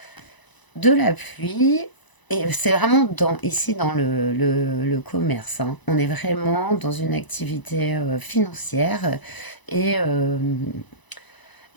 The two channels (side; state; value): right; late; 1.0 ms